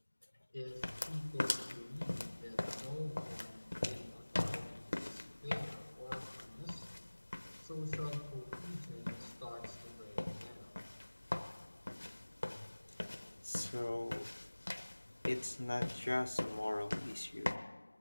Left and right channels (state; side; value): inverted; both; correlation -1.00